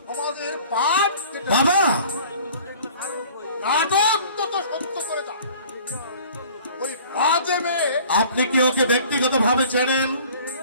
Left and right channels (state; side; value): inverted; both; correlation -0.49